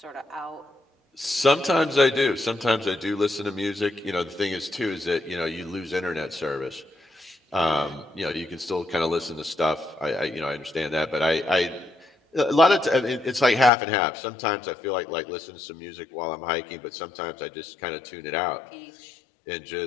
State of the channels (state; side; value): drops out; right; at 13.7 s